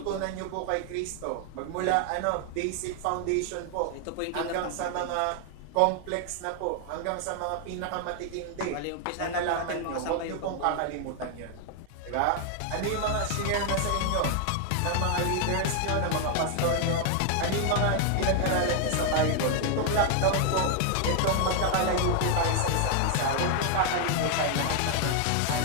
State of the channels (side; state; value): both; different; correlation 0.00